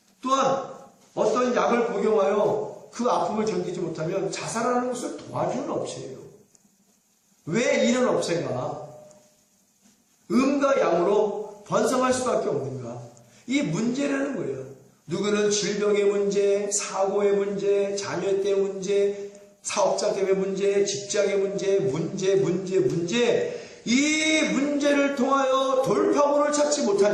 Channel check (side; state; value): both; identical; correlation 1.00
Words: 또한 어떤 약을 복용하여 그 아픔을 견디지 못하면 자살하는 것을 도와주는 업체예요. 왜 이런 업체가 음과 양으로 번성할 수밖에 없는가? 이 문제라는 거예요. 누구는 질병의 문제, 사고의 문제, 자녀 때문에 문제, 사업자 때문에 문제, 직장의 문제. 이 문제를 통하여 돌파구를 찾지